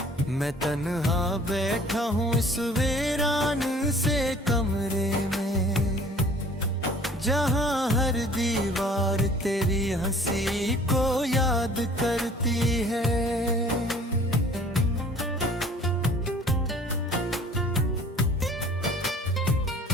मैं तन्हा बैठा हूँ इस वीरान से कमरे में, जहाँ हर दीवार तेरी हंसी को याद करती है।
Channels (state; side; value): normal; both; correlation 0.52